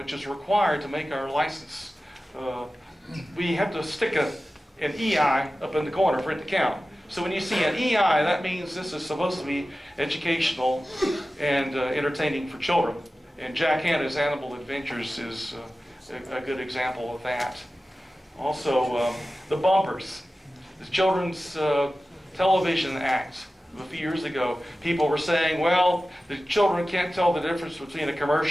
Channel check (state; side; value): normal; both; correlation 0.95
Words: is required to make our license, we have to stick an EI up in the corner for it to count. So when you see an EI, that means this is supposed to be educational and entertaining for children. And Jack Hanna's Animal Adventures is a good example of that. Also, the bumpers. The Children's Television Act a few years ago, people were saying, well, the children can't tell the difference between a